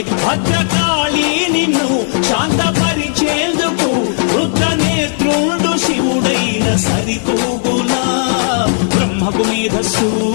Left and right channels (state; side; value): silent; right; digital silence